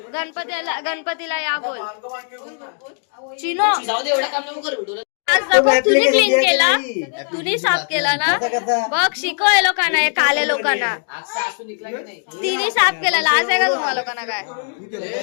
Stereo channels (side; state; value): right; silent; 63 dB below the other